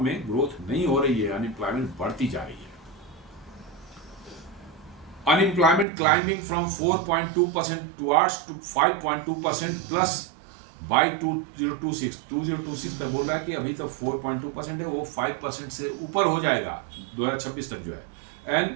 में ग्रोथ नहीं हो रही है, अनएम्प्लॉयमेंट बढ़ती जा रही है। Unemployment climbing from 4.2% towards to 5.2% plus by 2026 तक बोल रहा है कि अभी तो 4.2% है, वो 5% से ऊपर हो जाएगा 2026 तक जो है।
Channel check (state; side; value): drops out; left; at 5.9 s